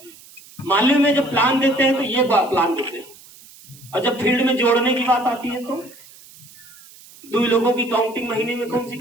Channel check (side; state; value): right; noise; hiss, 22 dB below the sound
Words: मालूम में जब प्लान देते हैं तो ये प्लान देते हैं, और जब फील्ड में जोड़ने की बात आती है तो 2 लोगों की काउंटिंग महीने में कौन सी